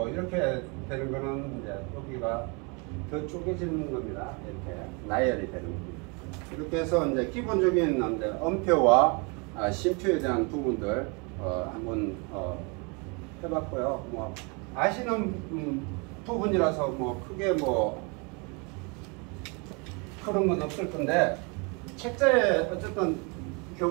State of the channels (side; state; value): left; quieter; 31.8 dB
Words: 이렇게 되는 거는 이제 여기가 더 쪼개지는 겁니다. 이렇게 나열이 되는 겁니다. 이렇게 해서 이제 기본적인 음표와 심표에 대한 부분들 한번 해봤고요. 뭐 아시는 부분이라서 뭐 크게 뭐 그런 건 없을 건데 책자에 어쨌든